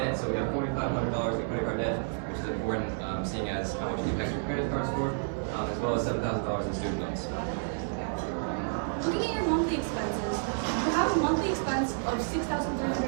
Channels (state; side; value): silent; left; digital silence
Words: So we have $4,500 in credit card debt, which is important, seeing as how much it impacts your credit card score, as well as $7,000 in student loans. Looking at your monthly expenses, you have a monthly expense of